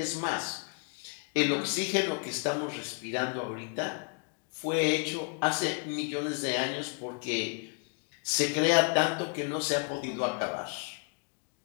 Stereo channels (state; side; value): quieter; right; 39.6 dB